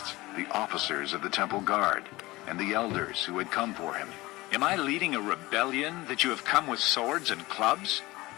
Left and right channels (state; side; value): quieter; right; 20.2 dB